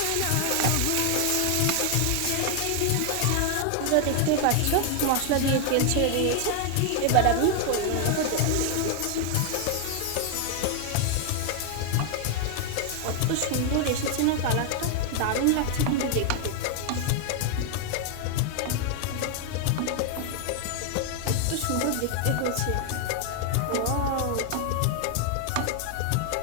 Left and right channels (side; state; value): both; different; correlation 0.00